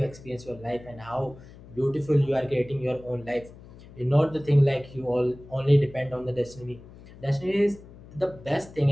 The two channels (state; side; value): noise; left; hum, 20 dB below the sound